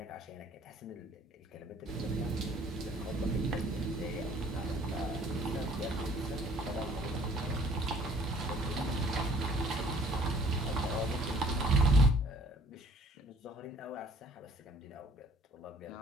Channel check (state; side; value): normal; both; correlation 0.56